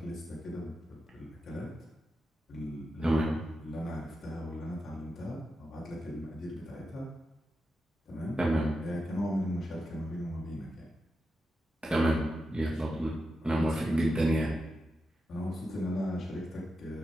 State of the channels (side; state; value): both; normal; correlation 0.89